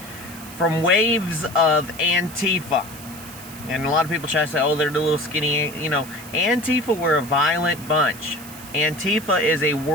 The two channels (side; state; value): right; noise; hiss, 16 dB below the sound